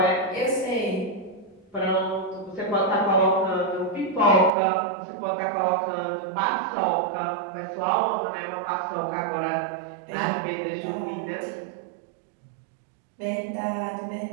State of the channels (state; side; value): drops out; left; at 4.5 s